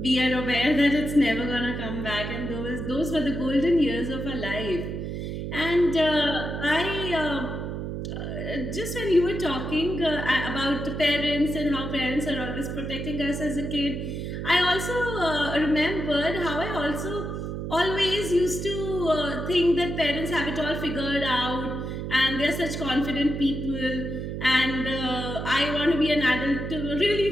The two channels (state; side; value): noise; right; hum, 5 dB below the sound